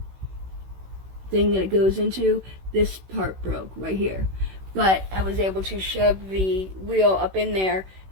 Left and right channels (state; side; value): late; left; 16 ms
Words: thing that it goes into. This part broke right here, but I was able to shove the wheel up in there,